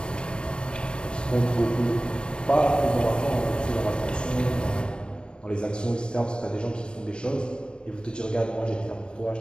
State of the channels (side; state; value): right; late; 0.051 ms